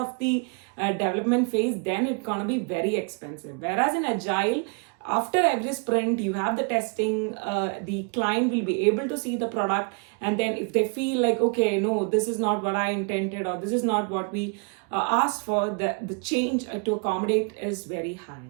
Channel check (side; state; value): left; quieter; 38.3 dB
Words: the development phase, then it's gonna be very expensive. Whereas in agile, after every sprint, you have the testing, the client will be able to see the product, and then if they feel like, okay, no, this is not what I intended, or this is not what we asked for, the change to accommodate is very